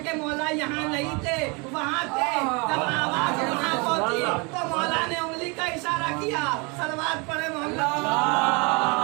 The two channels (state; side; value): quieter; left; 30.2 dB